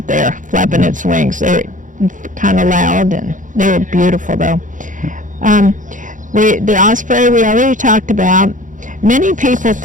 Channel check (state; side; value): late; left; 0.37 ms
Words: there flapping its wings. They're kind of loud, and they're beautiful though. The osprey we already talked about. Many people